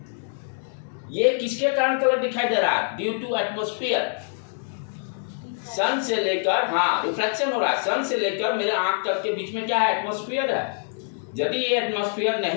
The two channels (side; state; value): right; silent; 61 dB below the other